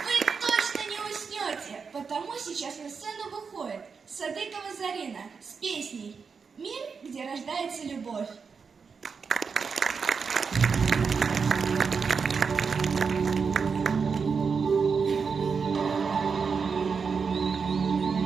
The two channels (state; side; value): quieter; left; 5.5 dB